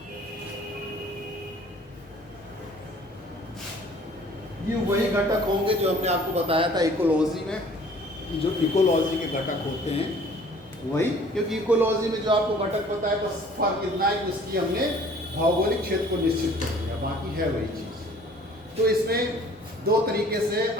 ये वही घटक होंगे जो हमने आपको बताया था इकोलॉजी में, जो इकोलॉजी के घटक होते हैं वही। क्योंकि इकोलॉजी में जो आपको घटक बताया, बस फर्क इतना है कि उसकी हमने भौगोलिक क्षेत्र को निश्चित कर दिया, बाकी है वही चीज़। तो इसमें दो तरीके से,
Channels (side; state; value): both; normal; correlation 0.53